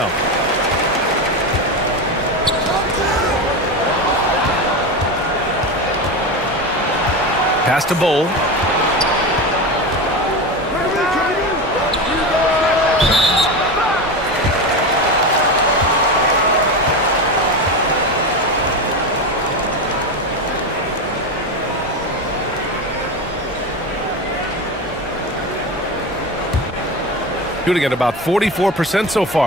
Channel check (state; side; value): normal; both; correlation 0.21